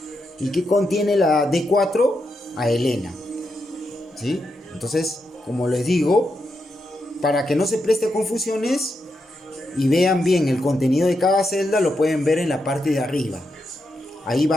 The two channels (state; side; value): normal; both; correlation 0.84